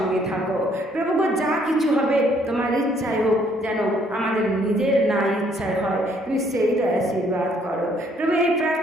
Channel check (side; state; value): both; normal; correlation 0.65